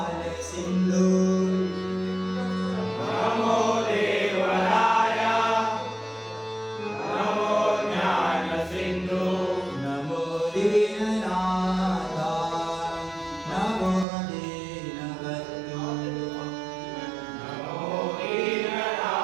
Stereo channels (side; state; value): left; drops out; at 14.1 s